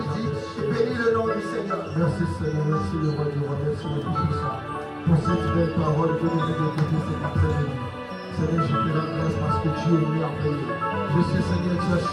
Bénis le nom du Seigneur. Merci Seigneur. Merci le roi du roi. Merci le Tout-Puissant. Pour cette belle parole que nous avons écoutée cet après-midi. Seigneur, je te rends grâce parce que tu es merveilleux. Je sais, Seigneur, tu as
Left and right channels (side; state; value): both; identical; correlation 1.00